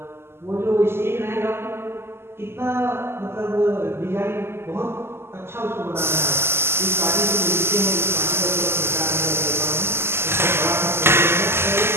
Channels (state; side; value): late; left; 0.12 ms